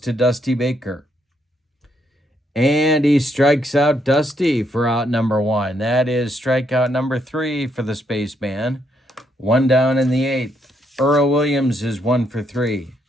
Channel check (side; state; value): both; normal; correlation 0.75